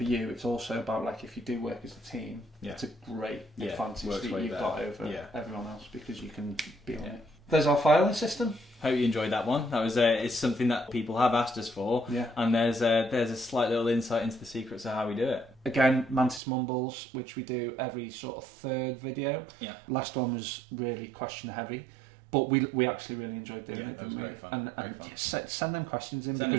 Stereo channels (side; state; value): left; drops out; at 16.4 s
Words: you. It's also about, like, if you do work as a team, it's a great advantage that you've got over everyone else, because you can be on it. There's our filing system. Hope you enjoyed that one. That was it's something that people have asked us for, and there's a slight little insight into the secrets of how we do it. Again, Mantis Mumbles, which we do every sort of third video. Yeah. Last one was really question heavy, but we actually really enjoyed doing it. Yeah, that was great fun. And send them questions